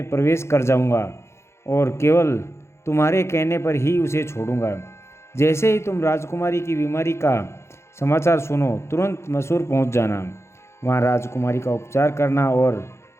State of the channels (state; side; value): late; right; 0.13 ms